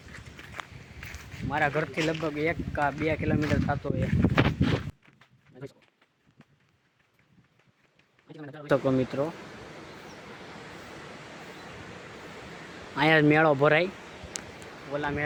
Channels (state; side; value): identical; both; correlation 1.00